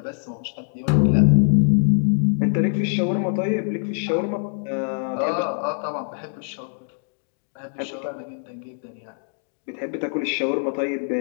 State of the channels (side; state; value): right; silent; digital silence